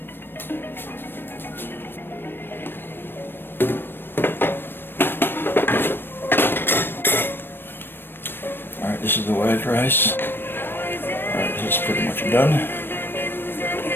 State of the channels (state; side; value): late; right; 0.099 ms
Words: Alright, this is the white rice. Alright, this is pretty much done.